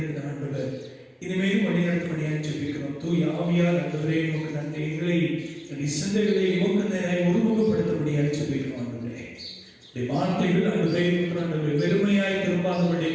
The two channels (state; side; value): identical; both; correlation 1.00